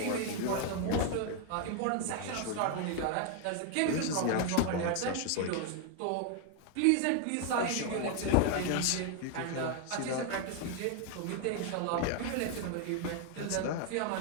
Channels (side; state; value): both; different; correlation 0.00